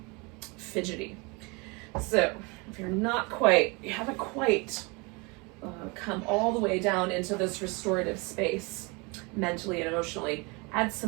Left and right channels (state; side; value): quieter; left; 28.7 dB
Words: fidgety. So if you haven't quite come all the way down into this restorative space, mentally and emotionally, add